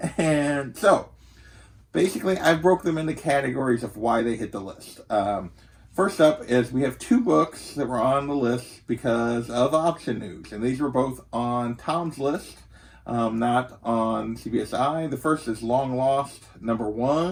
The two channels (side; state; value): both; identical; correlation 1.00